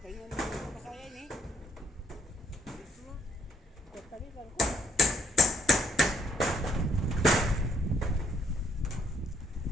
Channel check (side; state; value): both; normal; correlation 0.67